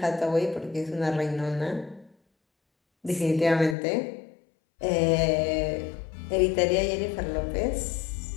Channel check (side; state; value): right; drops out; at 3.8 s